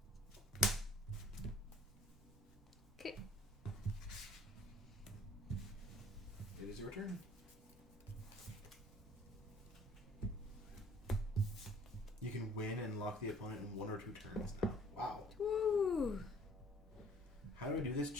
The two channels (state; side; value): normal; both; correlation 0.54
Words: Okay. It is your turn. You can win and lock the opponent in 1 or 2 turns now. Wow. Woo. How do I do this